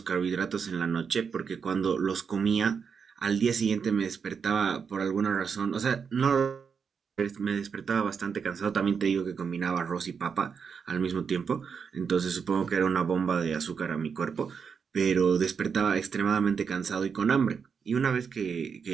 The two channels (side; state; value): left; quieter; 6.2 dB